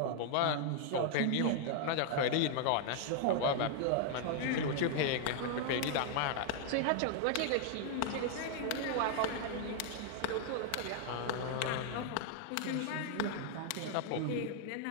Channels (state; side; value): different; both; correlation 0.00